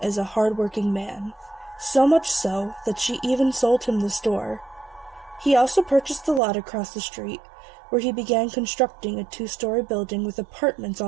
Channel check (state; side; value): drops out; left; at 6.4 s